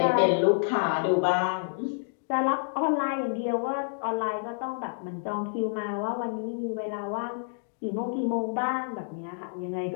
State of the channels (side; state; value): right; silent; digital silence